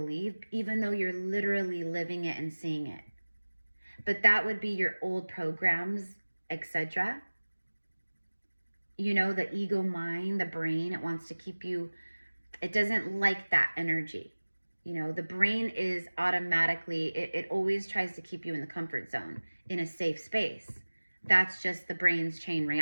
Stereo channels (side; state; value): both; inverted; correlation -1.00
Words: even though you're literally living it and seeing it. But that would be your old programs, etc. You know, the ego mind, the brain, it wants to keep you, it doesn't like that energy. You know, the brain is automatically, it always tries to keep you in the comfort zone, in a safe space. That's just the brain's chain